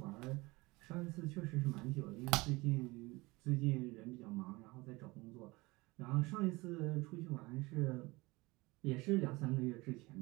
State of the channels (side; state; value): left; quieter; 23.0 dB